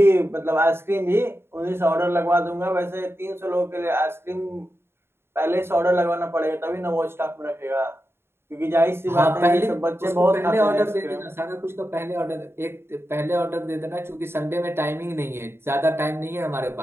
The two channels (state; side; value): late; left; 0.12 ms